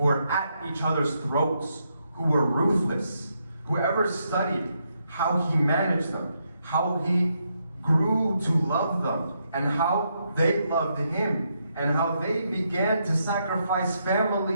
were at each other's throats, who were ruthless, whoever studied how he managed them, how he grew to love them, and how they loved him, and how they began to sacrifice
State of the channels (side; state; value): both; inverted; correlation -0.79